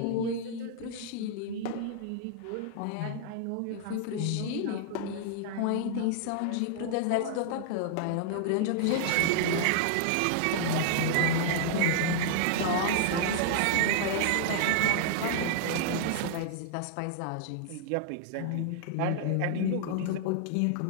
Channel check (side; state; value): both; different; correlation -0.01